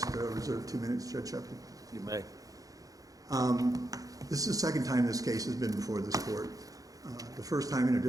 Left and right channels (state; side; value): late; left; 0.17 ms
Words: to reserve 2 minutes, Judge Shepard. You may. This is the second time this case has been before this Court. The first time in a